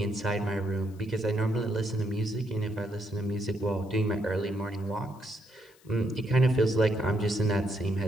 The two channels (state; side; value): noise; left; hiss, 29 dB below the sound